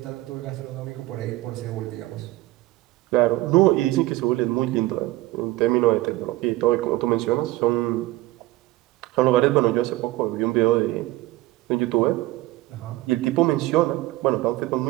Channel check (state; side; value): quieter; left; 18.0 dB